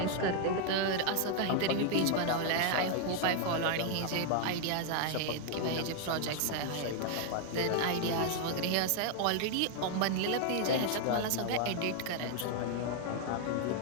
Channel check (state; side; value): different; both; correlation 0.00